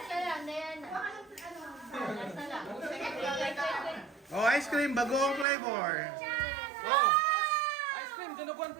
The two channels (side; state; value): left; drops out; at 5.5 s